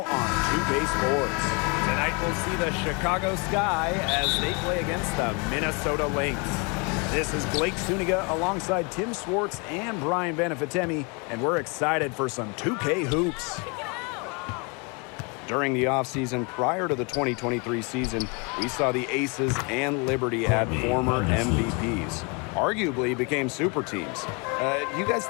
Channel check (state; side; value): quieter; right; 32.1 dB